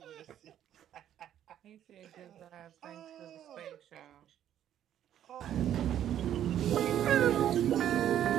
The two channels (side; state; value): left; quieter; 10.8 dB